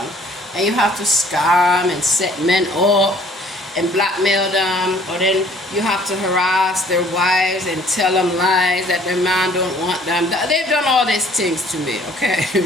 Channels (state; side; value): normal; both; correlation 0.57